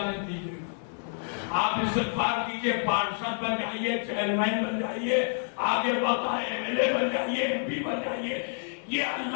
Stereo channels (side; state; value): right; silent; 57 dB below the other